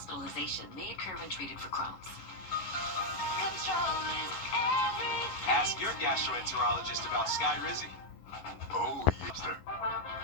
may occur when treated for Crohn's. Ask your gastroenterologist about Skyrizi. Oh, yes, sir.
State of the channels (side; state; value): right; late; 11 ms